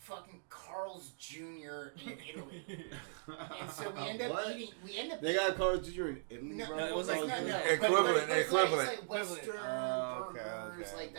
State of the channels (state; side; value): silent; left; digital silence